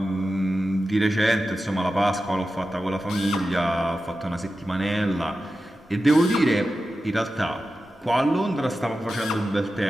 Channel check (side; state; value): both; normal; correlation 0.93